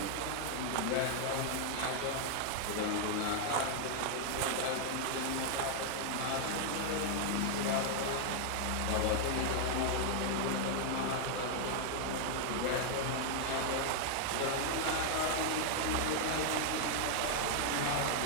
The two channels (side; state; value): both; different; correlation 0.00